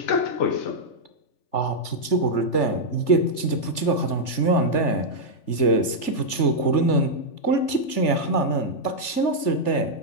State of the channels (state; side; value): late; right; 3.4 ms